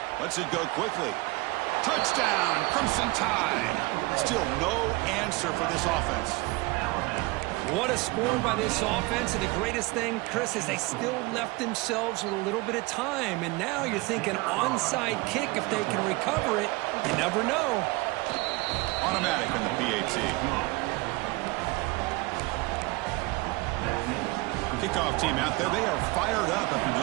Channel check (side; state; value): left; quieter; 23.4 dB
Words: Lets it go quickly. Touchdown, Crimson Tide. Still no answer for this offense. What a score by this offense, and the greatest thing, Chris, is they still left themselves with a little bit of time, and now you're thinking onside kick if they can recover it. You never know. Automatic in the PAT. Kickoff team out there, they are fired up after